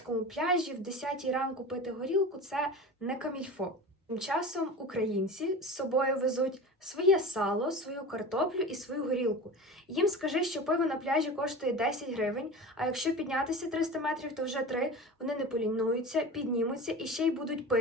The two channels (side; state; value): both; normal; correlation 0.32